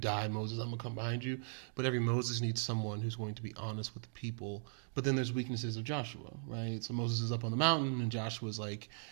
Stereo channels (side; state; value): left; silent; digital silence